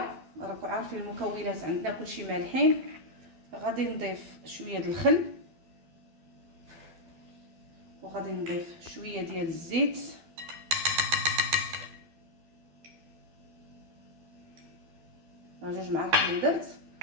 راكم عارفين المكونات عندنا كلشي مالحين. غادي نضيف شويه ديال الخل وغادي نضيف شويه ديال الزيت. جوج معالق اللي درت.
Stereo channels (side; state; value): left; late; 12 ms